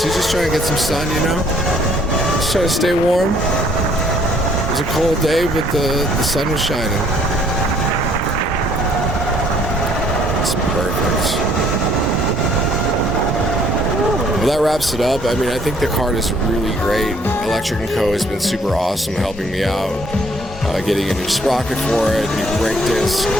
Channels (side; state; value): both; normal; correlation 0.63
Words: trying to get some sun, you know. Just trying to stay warm. It was a cold day, but the sun was shining. It's perfect. Well, that wraps it up. I mean, I think the Kart is really great. Electro Co has been super awesome helping me out. Getting a new sprocket for it, new brake disc.